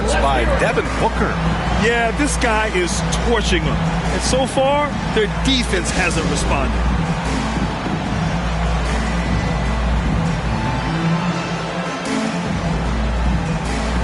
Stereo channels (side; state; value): both; identical; correlation 1.00